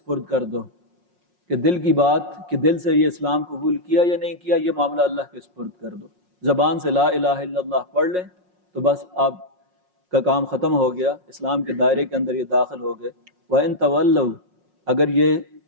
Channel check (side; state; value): left; late; 5.5 ms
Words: کر دو کہ دل کی بات، کہ دل سے یہ اسلام قبول کیا یا نہیں کیا، یہ معاملہ اللہ کے سپرد کر دو۔ زبان سے لا الہ الا اللہ پڑھ لیں تو بس آپ کا کام ختم ہو گیا، اسلام کے دائرے کے اندر یہ داخل ہو گئے۔ وَإِن تَوَلَّوْا، اگر یہ